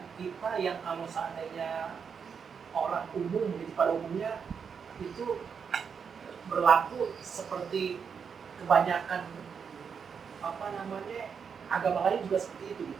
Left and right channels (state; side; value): quieter; left; 6.5 dB